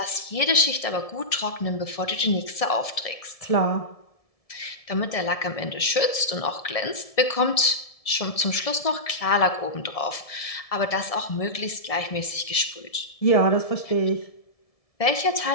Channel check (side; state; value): right; late; 1.7 ms